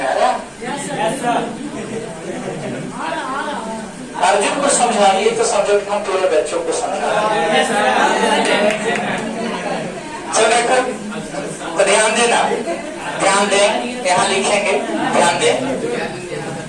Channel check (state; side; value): identical; both; correlation 1.00